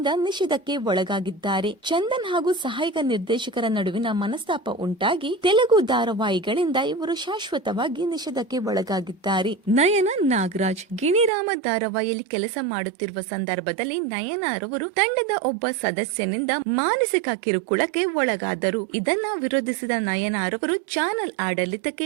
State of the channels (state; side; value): drops out; left; at 11.3 s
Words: ನಿಷೇಧಕ್ಕೆ ಒಳಗಾಗಿದ್ದಾರೆ. ಚಂದನ್ ಹಾಗೂ ಸಹಾಯಕ ನಿರ್ದೇಶಕರ ನಡುವಿನ ಮನಸ್ತಾಪ ಉಂಟಾಗಿ ತೆಲುಗು ಧಾರಾವಾಹಿಗಳಿಂದ ಇವರು ಶಾಶ್ವತವಾಗಿ ನಿಷೇಧಕ್ಕೆ ಒಳಗಾಗಿದ್ದಾರೆ. ನಯನ ನಾಗರಾಜ್ ಗಿಣಿರಾಮ ಧಾರಾವಾಹಿಯಲ್ಲಿ ಕೆಲಸ ಮಾಡುತ್ತಿರುವ ಸಂದರ್ಭದಲ್ಲಿ ನಯನ ರವರು ತಂಡದ ಒಬ್ಬ ಸದಸ್ಯನಿಂದ ಮಾನಸಿಕ ಕಿರುಕುಳಕ್ಕೆ ಒಳಗಾದರು. ಇದನ್ನ ವಿರೋಧಿಸಿದ ನಯನಾರವರು ಚಾನೆಲ್ ಆಡಳಿತಕ್ಕೆ